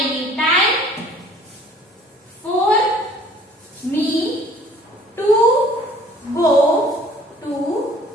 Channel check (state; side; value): normal; both; correlation 0.53